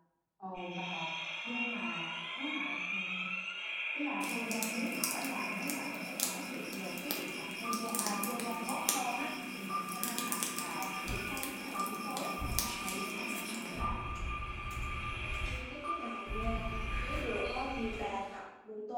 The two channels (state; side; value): identical; both; correlation 1.00